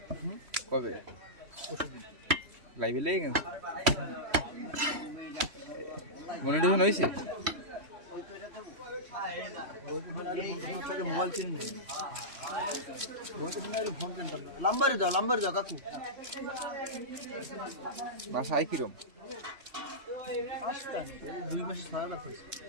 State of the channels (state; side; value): late; left; 3.0 ms